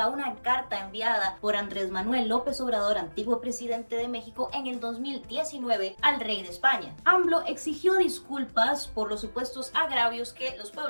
a una carta enviada por Andrés Manuel López Obrador, antiguo presidente de México, en el 2019 al rey de España. AMLO exigió disculpas por los supuestos agravios que los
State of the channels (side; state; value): both; inverted; correlation -1.00